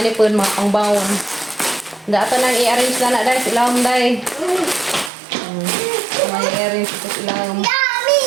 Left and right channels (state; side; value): drops out; left; at 5.1 s